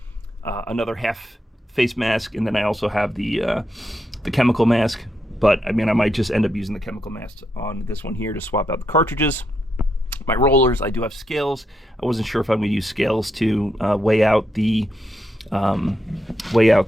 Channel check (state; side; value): normal; both; correlation 0.81